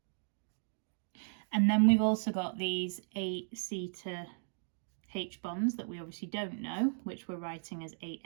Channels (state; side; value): silent; left; digital silence